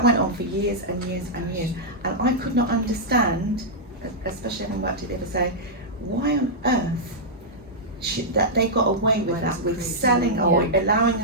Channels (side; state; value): both; normal; correlation -0.08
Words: went on for years and years and years, and I could not understand, especially having worked at the other side, why on earth that they got away with that, with selling or allowing